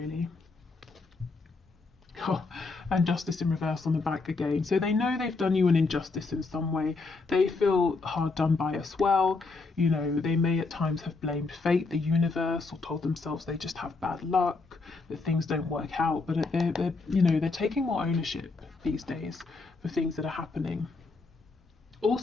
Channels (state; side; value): quieter; right; 3.9 dB